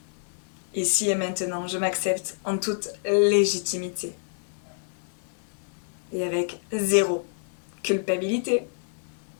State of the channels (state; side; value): silent; right; 60 dB below the other